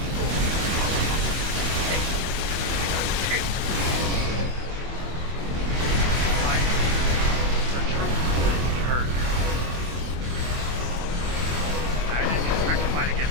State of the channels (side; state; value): left; late; 24 ms